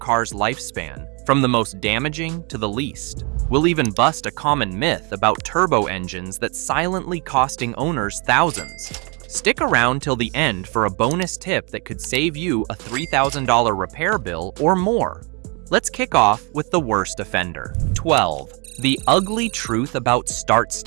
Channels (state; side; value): quieter; left; 32.5 dB